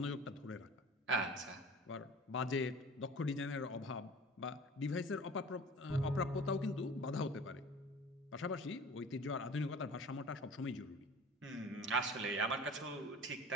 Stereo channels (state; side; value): normal; both; correlation 0.42